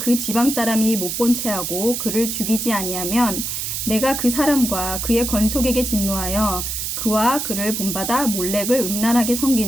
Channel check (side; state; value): right; noise; hiss, 3 dB below the sound